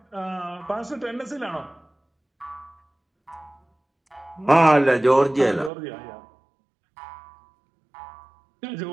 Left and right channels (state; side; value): drops out; left; at 5.7 s